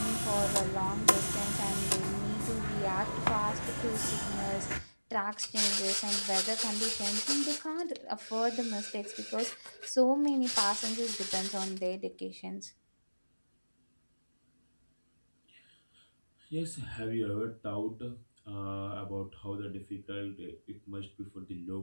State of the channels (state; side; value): inverted; both; correlation -1.00